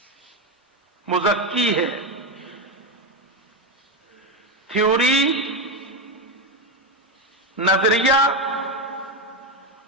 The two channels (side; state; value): both; normal; correlation 0.11